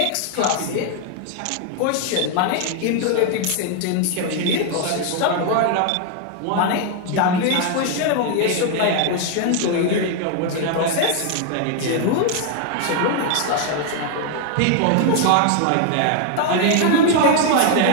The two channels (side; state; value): both; different; correlation 0.00